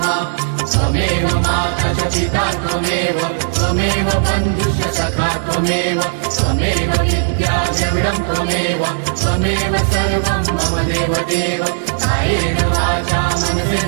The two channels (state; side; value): silent; left; 68 dB below the other